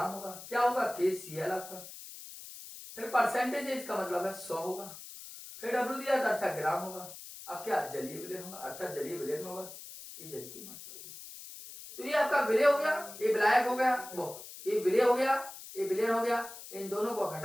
होगा, क्या होगा KCl आपका, फिर परसेंटेज है, इसका मतलब है 100 होगा, फिर W दिया था अर्थात ग्राम होगा, अब क्या जलीय विलयन होगा, अर्थात जलीय विलयन होगा, ये जल की मात्रा होगी। तो ये आपका विलय हो गया, ये विलायक हो गया, वो ये विलय हो गया, ये विलयन हो गया, इन दोनों को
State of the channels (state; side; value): noise; left; hiss, 14 dB below the sound